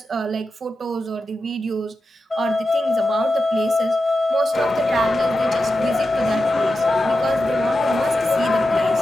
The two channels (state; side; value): normal; both; correlation 0.91